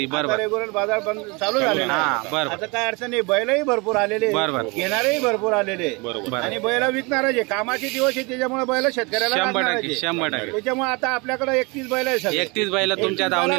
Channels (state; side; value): quieter; left; 27.9 dB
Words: बरोबर, रेग्युलर बाजार बंद चालू झालेला आहे। आता काय अडचण नाही, बैलही भरपूर आलेले, घेणारेही भरपूर आलेले आणि बैल विकणारे कामाचे दिवस आहे, त्याच्यामुळे बैल शेतकऱ्याला 100%। त्याच्यामुळे आता आपल्याकडे 31 बैल आहे। 31 बैल तुमच्या